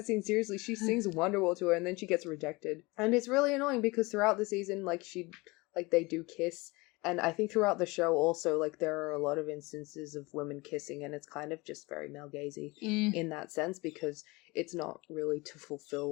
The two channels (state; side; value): quieter; right; 24.2 dB